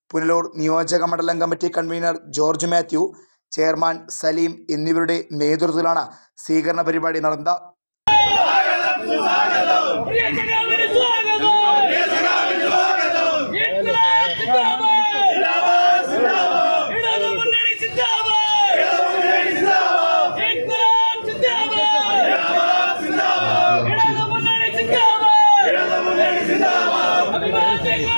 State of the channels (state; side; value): inverted; both; correlation -1.00